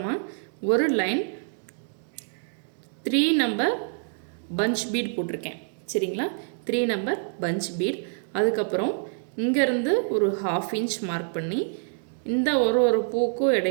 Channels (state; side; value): silent; left; digital silence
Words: ஒரு லைன் 3 நம்பர் பஞ்ச் பீட் போட்டிருக்கேன் சரிங்களா. 3 நம்பர் பஞ்ச் பீட். அதுக்கப்புறம் இங்கேருந்து ஒரு 1/2 இன்ச் மார்க் பண்ணி இந்த ஒரு பூக்கும்